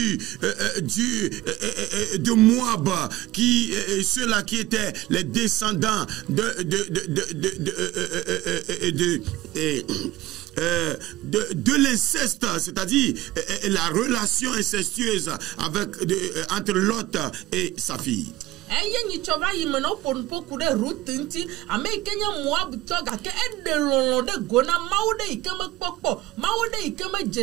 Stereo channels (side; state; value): left; quieter; 16.9 dB